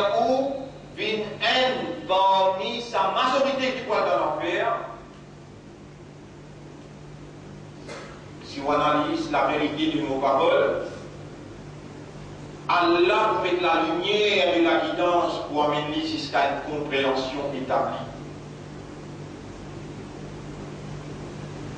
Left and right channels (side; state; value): both; identical; correlation 1.00